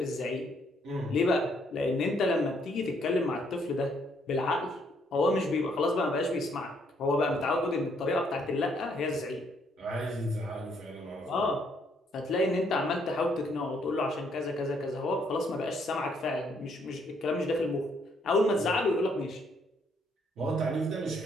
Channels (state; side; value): normal; both; correlation 0.70